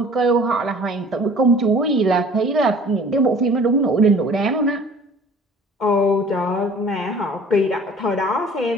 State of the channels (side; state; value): both; normal; correlation 0.49